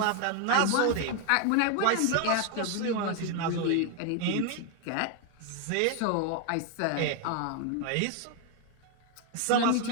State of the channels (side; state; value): both; different; correlation 0.01